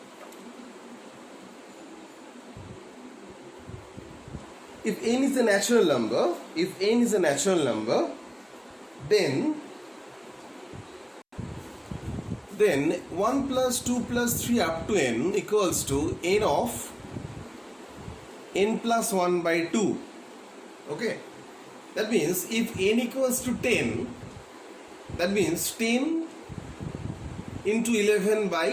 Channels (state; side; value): identical; both; correlation 1.00